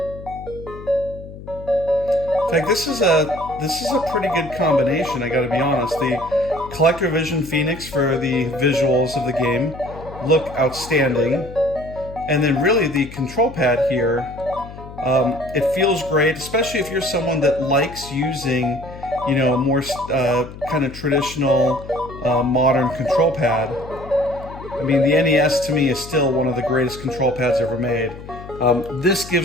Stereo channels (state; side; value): noise; left; hum, 14 dB below the sound